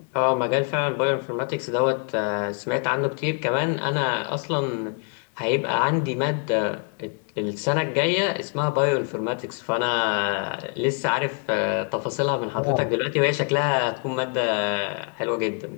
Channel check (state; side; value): quieter; right; 39.7 dB